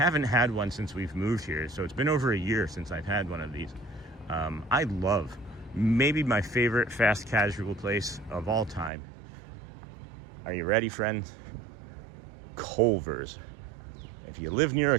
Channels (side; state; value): left; drops out; at 8.9 s